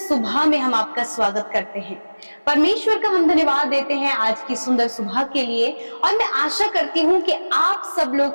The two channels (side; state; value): both; inverted; correlation -1.00